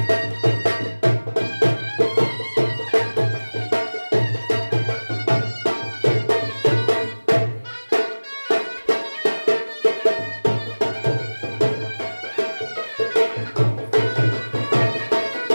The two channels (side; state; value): both; inverted; correlation -1.00